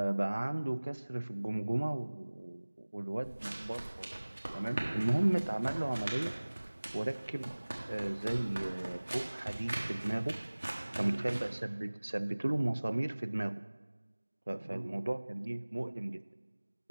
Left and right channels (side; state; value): both; inverted; correlation -1.00